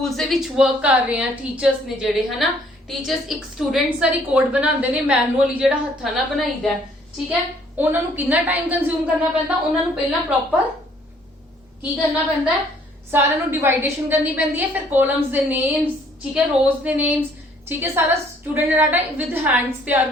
ਦੇ ਵਿੱਚ ਵਰਕ ਕਰ ਰਹੇ ਆ, ਟੀਚਰਸ ਨੇ ਜਿਹੜੇ ਹਨਾ, ਟੀਚਰਸ ਇੱਕ ਸਟੂਡੈਂਟਸ ਦਾ ਰਿਕਾਰਡ ਬਣਾਉਂਦੇ ਨੇ ਮੈਨੂਅਲੀ ਜਿਹੜਾ ਹੱਥਾਂ ਨਾਲ ਬਣਾਈਦਾ। ਠੀਕ ਹੈ, ਉਹਨਾਂ ਨੂੰ ਕਿੰਨਾ ਟਾਈਮ ਕੰਜ਼ਿਊਮ ਕਰਨਾ ਪੈਂਦਾ, ਉਹਨਾਂ ਨੂੰ ਪਹਿਲਾਂ ਪ੍ਰੋਪਰ ਕੀ ਕਰਨਾ ਪੈਂਦਾ, ਸਾਰਿਆਂ ਨੂੰ ਡਿਵਾਈਡੇਸ਼ਨ ਕਰਨੀ ਪੈਂਦੀ ਹੈ, ਫਿਰ ਕਾਲਮਸ ਦੇ ਨੇਮਸ, ਠੀਕ ਹੈ, ਰੋਜ਼ ਦੇ ਨੇਮਸ, ਠੀਕ ਹੈ, ਸਾਰਾ ਸਟੂਡੈਂਟ ਡਾਟਾ ਵਿਦ ਹੈਂਡਸ ਤਿਆਰ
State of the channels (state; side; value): normal; both; correlation 0.62